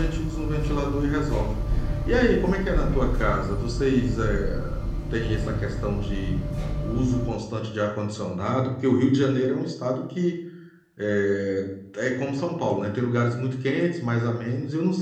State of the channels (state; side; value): identical; both; correlation 1.00